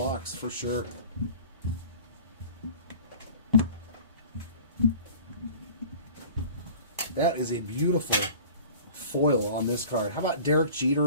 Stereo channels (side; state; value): both; inverted; correlation -0.43